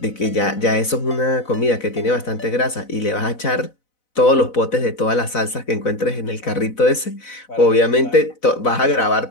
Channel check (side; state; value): right; late; 4.0 ms